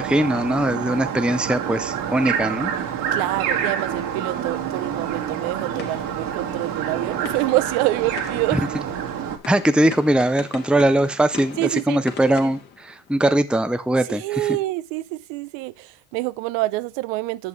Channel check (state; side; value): quieter; left; 3.5 dB